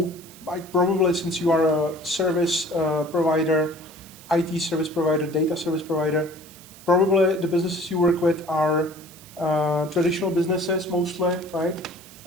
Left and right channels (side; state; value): right; noise; hiss, 20 dB below the sound